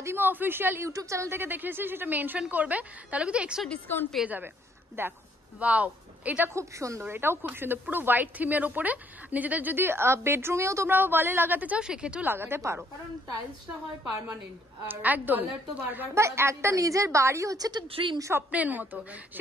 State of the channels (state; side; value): normal; both; correlation 0.67